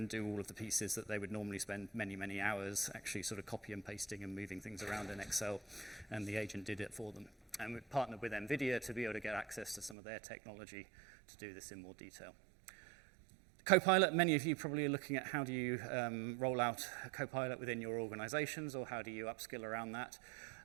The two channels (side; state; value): left; drops out; at 10.0 s